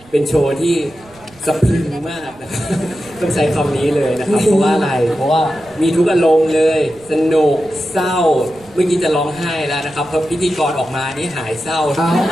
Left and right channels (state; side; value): noise; right; rumble, 26 dB below the sound